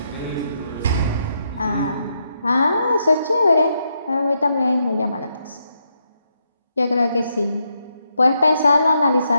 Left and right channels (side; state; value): both; inverted; correlation -0.80